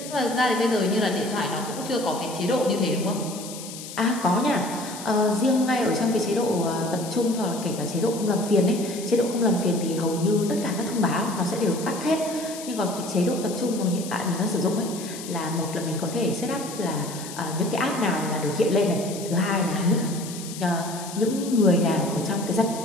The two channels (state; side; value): noise; left; hiss, 12 dB below the sound